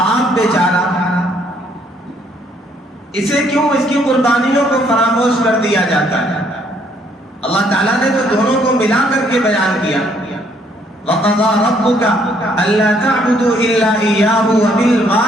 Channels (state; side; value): normal; both; correlation 0.67